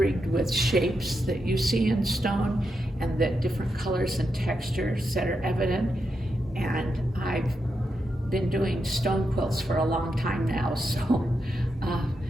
with shapes that you see in stone and the different colors and textures that are evident. And I've been doing stone quilts for a long time now, so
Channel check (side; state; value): both; normal; correlation 0.85